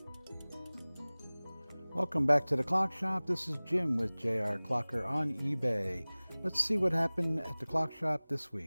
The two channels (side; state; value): both; inverted; correlation -1.00